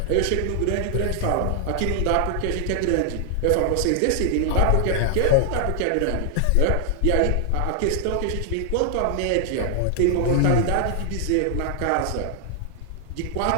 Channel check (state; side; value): different; both; correlation 0.00